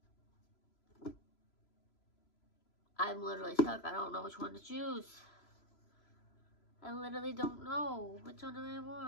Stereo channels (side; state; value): right; late; 3.0 ms